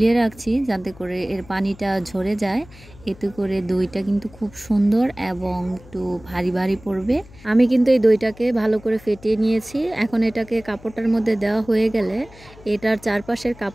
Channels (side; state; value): left; noise; hum, 22 dB below the sound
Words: রাখছি যাতে করে এর পানিটা ঝরে যায়। এতে করে দইটা কিন্তু খুব সুন্দর এবং একটু ভারী ভারী পড়বে। আমি কিন্তু এই দইটাকে ভালো করে ফেটিয়ে নিয়েছি। এখন এটাকে কাপড়টার মধ্যে দেওয়া হয়ে গেলে এটার চারপাশের